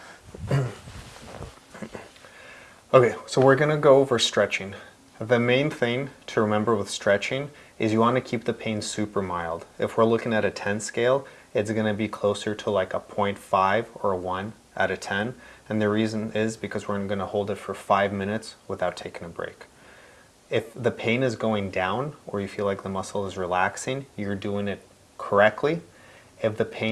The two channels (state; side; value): identical; both; correlation 1.00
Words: Okay, so we're gonna go over stretching. The main thing to remember with stretching is you want to keep the pain super mild. If we're looking at a 10 scale, it's going to be closer to like a 0.5 or a 1 out of 10. And the reason is because we're going to hold it for 5 minutes without taking a break. If the pain is going down or you feel like the muscle is relaxing, you're doing it correctly. If the